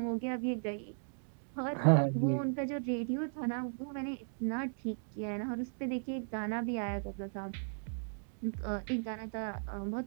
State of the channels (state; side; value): silent; left; digital silence